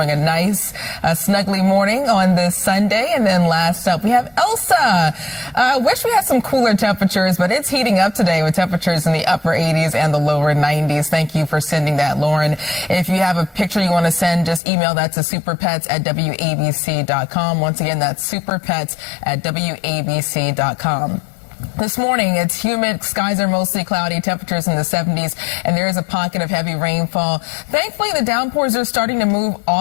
a nice snuggly morning on this Sunday. And then last up, we have Elsa. Wish we had some cooler temperatures, but it's heating up today with temperatures in the upper 80s and the lower 90s. Thank you for sending that, Lauren. If you have a picture you want to send, just email that to superpets@wabc.com. Once again, that's superpets@wabc.com. This morning, it's humid. Skies are mostly cloudy. Temperatures in the 70s, and there is a pocket of heavy rainfall. Thankfully, the downpours are starting to move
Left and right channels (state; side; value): drops out; right; at 14.6 s